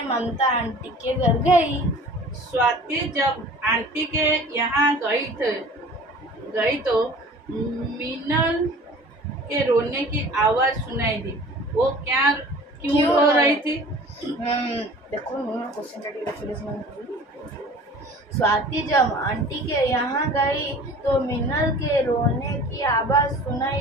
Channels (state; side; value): normal; both; correlation 0.45